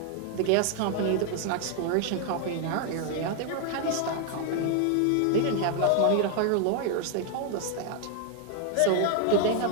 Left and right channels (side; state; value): both; different; correlation 0.00